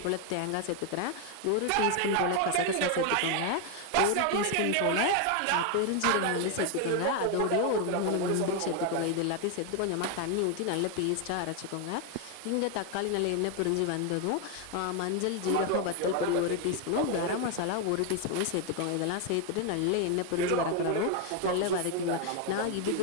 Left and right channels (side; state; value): both; different; correlation 0.01